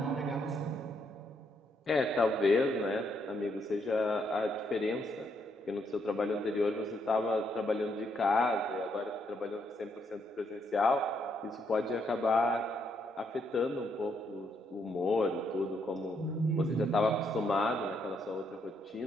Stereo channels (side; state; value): both; normal; correlation 0.75